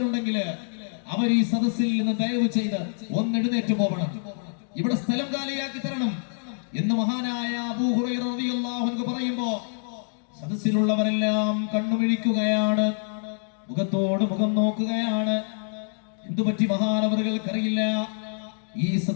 അവർ ഈ സദസ്സിൽ നിന്ന് ദയവ് ചെയ്ത് എഴുന്നേറ്റ് പോകണം, ഇവിടെ സ്ഥലം കാലിയാക്കി തരണം എന്ന് മഹാനായ അബൂ ഹുറൈറ റളിയല്ലാഹു അൻഹു പറയുമ്പോ സദസ്സിലുള്ളവരെല്ലാം കണ്ണുമിഴിക്കുകയാണ്, മുഖത്തോട് മുഖം നോക്കുകയാണ്. എന്തുപറ്റി മഹാനവറുകൾക്കറിയില്ല. ഈ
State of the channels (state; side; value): silent; right; digital silence